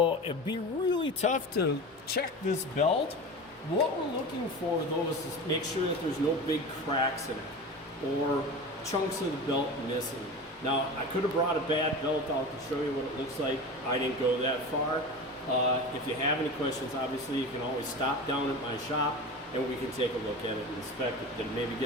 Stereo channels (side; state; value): both; normal; correlation 0.30